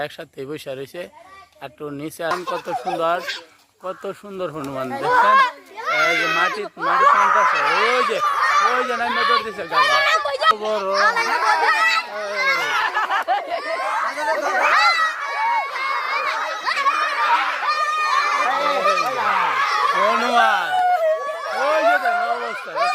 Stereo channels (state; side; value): identical; both; correlation 1.00